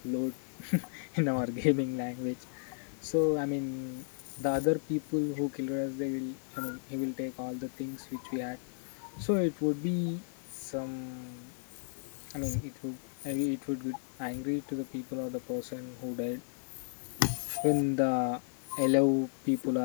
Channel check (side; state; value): right; silent; digital silence